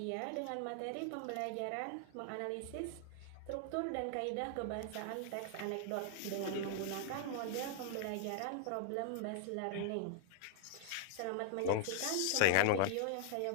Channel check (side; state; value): both; different; correlation -0.01